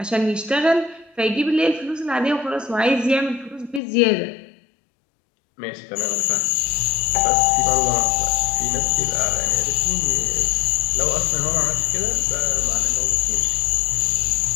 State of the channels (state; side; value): drops out; right; at 3.8 s